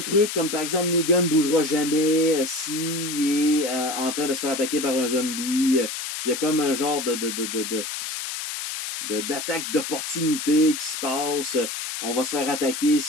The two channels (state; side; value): noise; left; hiss, 5 dB below the sound